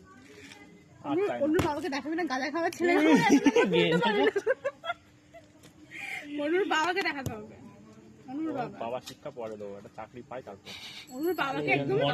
অন্য বাবাকে দেখাবি না, গাঁজা খাওয়ার ছেলে। অনুর বাবাকে দেখাতে হবে। অনুর বাবা শিক্ষা পরে দেবো, একটা চাকরি পাই তারপর। অনুর বাবাকে একদম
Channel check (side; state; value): both; identical; correlation 1.00